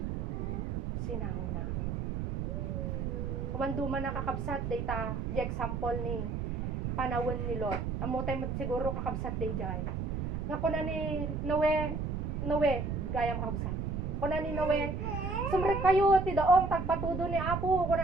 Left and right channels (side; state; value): right; noise; rumble, 2 dB below the sound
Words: sinango na awan duman na kakabsat dayta di example ni panawon ni Lot amo tay mo't siguro kakabsat dayjay nga kuna ni Noe gayam kakabsat kuna ni Noe Sumret kayo, ti daong tagpatudo ni Apo,